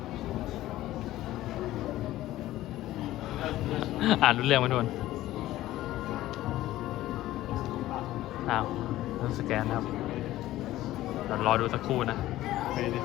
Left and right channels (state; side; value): quieter; right; 15.3 dB